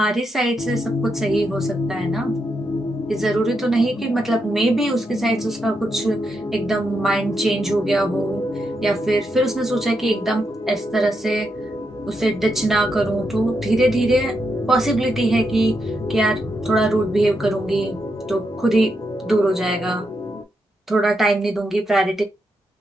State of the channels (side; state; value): both; normal; correlation 0.83